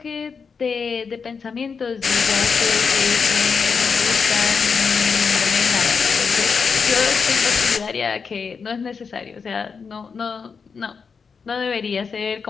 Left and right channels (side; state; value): right; quieter; 5.6 dB